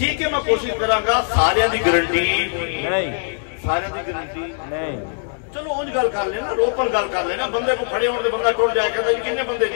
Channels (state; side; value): silent; right; 65 dB below the other